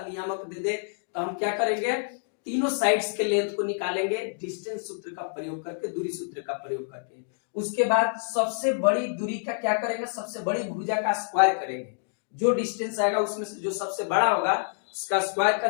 नियामक दे दे, तो हम क्या करेंगे, तीनों साइड्स के लेंथ को निकालेंगे डिस्टेंस सूत्र का प्रयोग करके, दूरी सूत्र का प्रयोग करके। उसके बाद सबसे बड़ी दूरी का क्या करेंगे, सबसे बड़ी भुजा का स्क्वायर करेंगे, जो डिस्टेंस आएगा उसमें से जो सबसे बड़ा होगा उसका स्क्वायर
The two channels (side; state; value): right; silent; digital silence